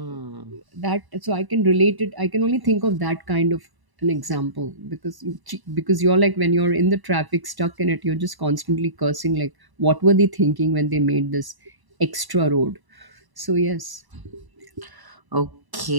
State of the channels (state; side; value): late; left; 1.0 ms